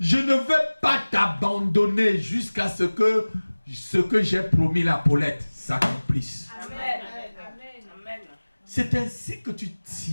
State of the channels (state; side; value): inverted; both; correlation -1.00